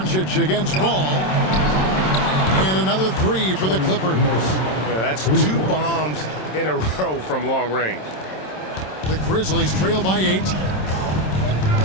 against Ball. And another 3 for the Clippers. Yeah, that's 2 bombs in a row from long range. The Grizzlies trail by 8.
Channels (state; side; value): late; right; 27 ms